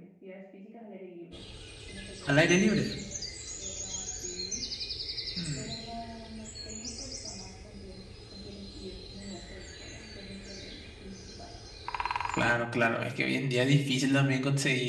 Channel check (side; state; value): both; identical; correlation 1.00